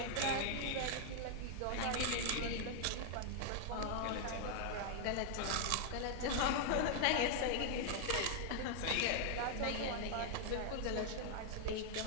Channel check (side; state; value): both; different; correlation 0.00